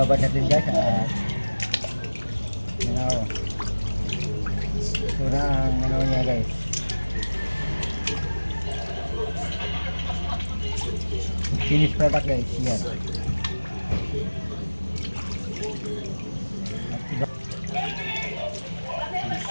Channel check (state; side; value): inverted; both; correlation -1.00